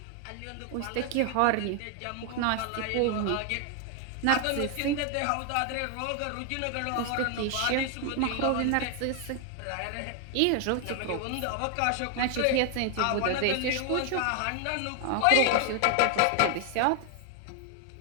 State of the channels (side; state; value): both; different; correlation 0.00